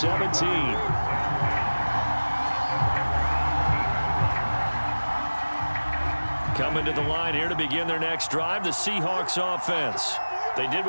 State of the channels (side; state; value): both; inverted; correlation -1.00